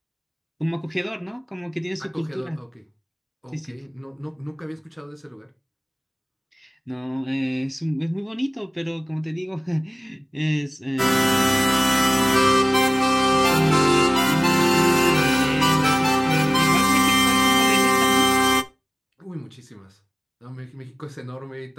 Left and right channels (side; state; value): both; identical; correlation 1.00